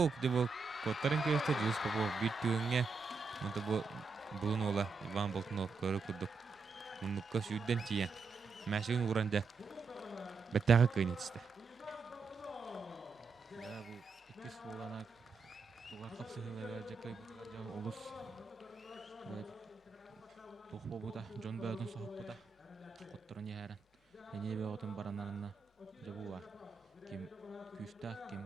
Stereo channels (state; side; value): quieter; left; 4.7 dB